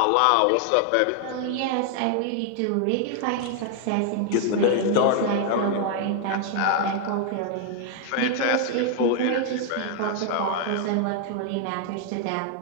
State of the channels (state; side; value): different; both; correlation 0.00